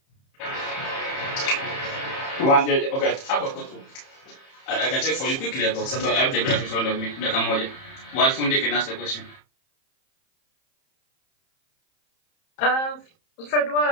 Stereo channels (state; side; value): late; right; 30 ms